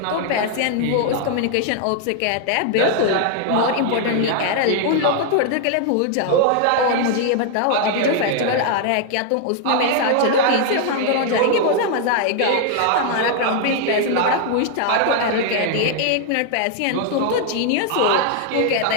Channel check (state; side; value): different; both; correlation 0.00